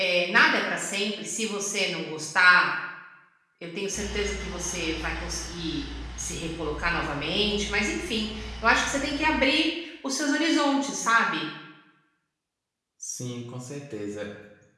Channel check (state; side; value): identical; both; correlation 1.00